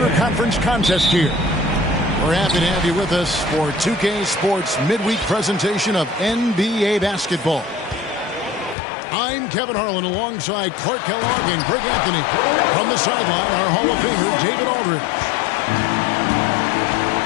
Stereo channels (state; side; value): drops out; right; at 8.8 s